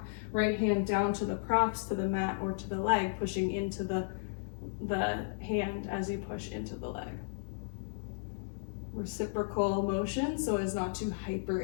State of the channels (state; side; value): silent; right; digital silence